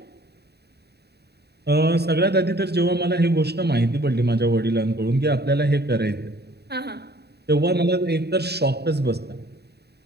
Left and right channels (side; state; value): left; late; 0.48 ms